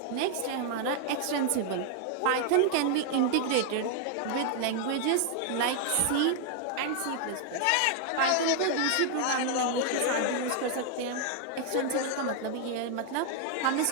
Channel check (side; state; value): both; different; correlation 0.00